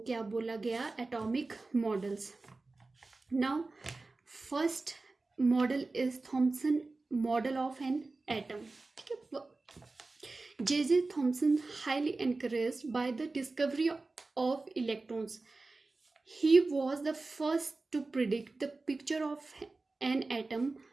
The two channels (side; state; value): left; quieter; 3.5 dB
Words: क्या बोला गया? Atomic models. Now first model is Thompson model of an atom. ठीक है, J Thomson highly encouraged by the discovery of electrons. He was the first to predict the picture of an atom